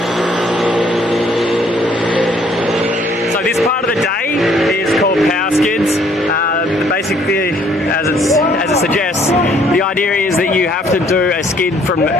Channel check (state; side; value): normal; both; correlation 0.63